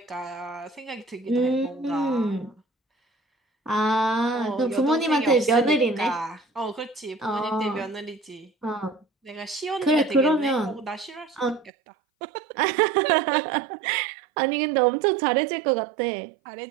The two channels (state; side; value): drops out; left; at 11.7 s